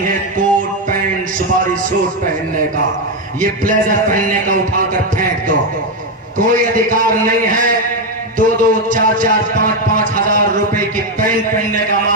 ہے کوٹ پینٹ سپاری سوٹ پہننے کا, یہ بلیزر پہننے کا اٹھا کر پھینک دو, کوئی ادھیکار نہیں ہے 2-2, 4-4, 5-5 ہزار روپے کی پینٹ پہننے کا.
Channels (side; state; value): both; normal; correlation 0.07